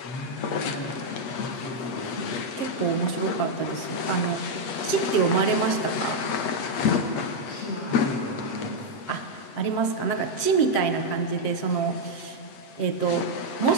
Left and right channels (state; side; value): late; right; 7.5 ms